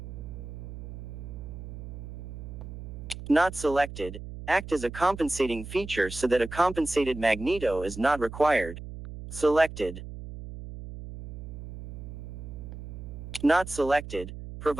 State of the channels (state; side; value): noise; right; hum, 11 dB below the sound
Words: Not selected, act as a compensating feature so that a compensated magneto is not required. Selected. Not selected,